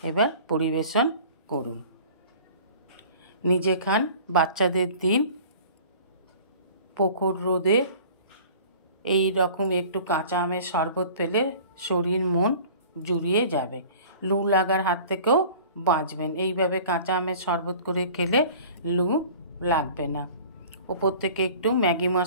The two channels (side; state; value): both; inverted; correlation -0.46